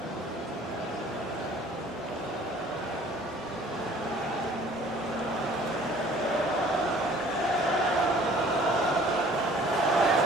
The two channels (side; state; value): both; normal; correlation 0.53